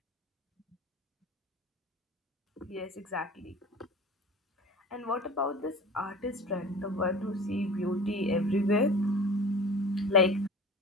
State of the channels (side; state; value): both; normal; correlation 0.38